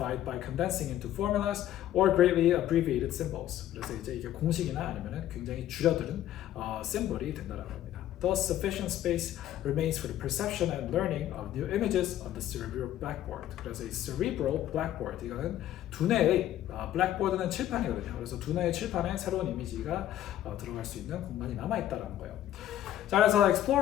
by condensing into formulas or greatly abbreviated symbols. 그래서 이제 이게 공식이나 아니면은 굉장히 줄여드는 심볼이 된다는 겁니다. Thus, sufficient space remains for the perception and learning of new images on the cerebral blackboard. 그래서 이 cerebral blackboard 이거는 두뇌의 blackboard는 칠판이거든요. 그래서 두뇌의 칠판에 새로운 이미지가 들어갈 수 있는 공간이 남아 있다라는 거예요. 자, 그래서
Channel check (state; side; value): quieter; right; 12.5 dB